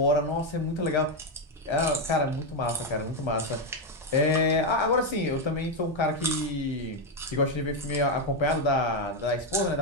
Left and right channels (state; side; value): normal; both; correlation 0.05